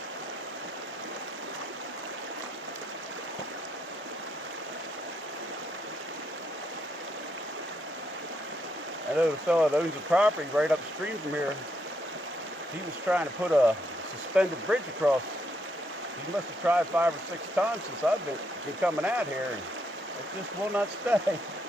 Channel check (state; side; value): normal; both; correlation 0.77